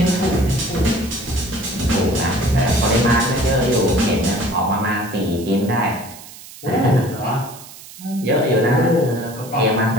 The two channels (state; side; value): noise; right; hiss, 17 dB below the sound